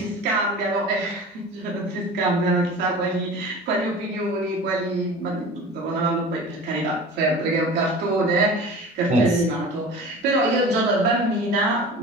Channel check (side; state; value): both; normal; correlation 0.38